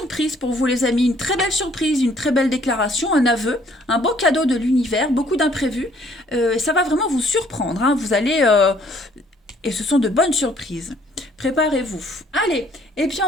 pour vous les amis, une très belle surprise, une très belle déclaration, un aveu, un beau cadeau de l'univers, beaucoup d'imprévus, ça va vraiment vous surprendre, hein, vous allez... et ce sont de bonnes surprises. Préparez-vous. Allez, et puis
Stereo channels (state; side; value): normal; both; correlation 0.62